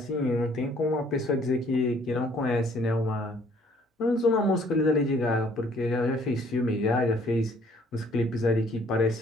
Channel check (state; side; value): normal; both; correlation 0.60